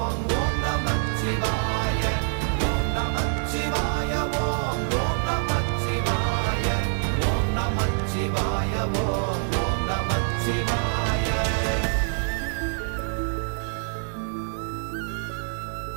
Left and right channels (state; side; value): silent; left; 61 dB below the other